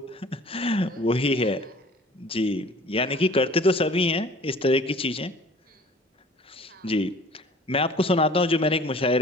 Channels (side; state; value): both; normal; correlation 0.49